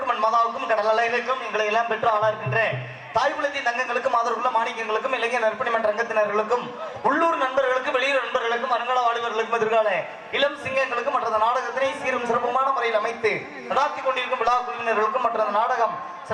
மண் மாதாவுக்கும் கடல் அலைகளுக்கும் எங்களை எல்லாம் பெற்று ஆளா இருக்கின்ற தாய்குலத்தின் தங்கங்களுக்கும் ஆதரவுள்ள மாணிக்கங்களுக்கும் இளைஞர் நற்பணி மன்ற ரங்கத்தினர்களுக்கும் உள்ளூர் நண்பர்களுக்கும் வெளியூர் நண்பர்களுக்கும் அருங்கால வாலிபர்களுக்கும் எதிர்கால இளம் சிங்கங்களுக்கும் மற்ற நாடகத்தினை சீரும் சிறப்புமான முறையில் அமைத்து நடாத்தி கொண்டிருக்கும் விழா குழுவினர்களுக்கும் மற்ற நாடகம்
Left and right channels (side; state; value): both; identical; correlation 1.00